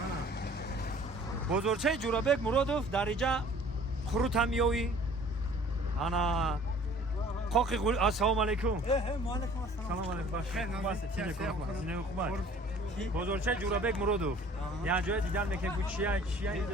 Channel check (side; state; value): both; normal; correlation 0.51